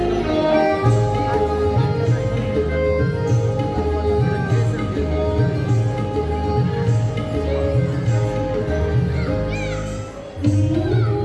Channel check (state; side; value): identical; both; correlation 1.00